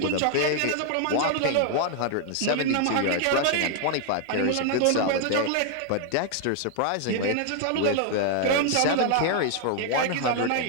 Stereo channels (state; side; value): different; both; correlation 0.00